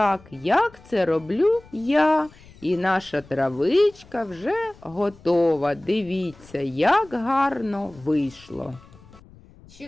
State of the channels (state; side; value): noise; left; rumble, 24 dB below the sound